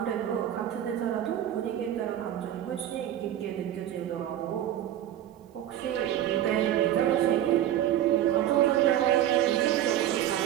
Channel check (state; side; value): quieter; left; 11.8 dB